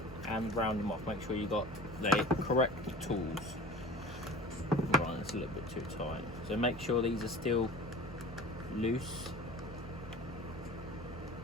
and round them off. Make sure you got the correct tools. Right, it's a little bit too tight. So make sure these are still loose.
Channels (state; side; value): normal; both; correlation 0.40